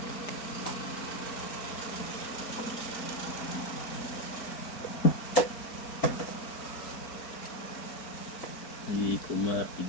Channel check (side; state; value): right; late; 4.3 ms